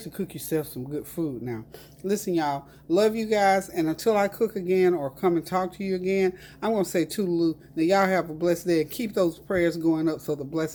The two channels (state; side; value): identical; both; correlation 1.00